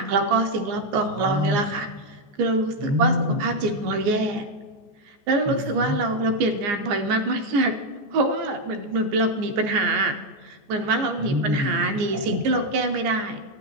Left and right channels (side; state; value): left; late; 14 ms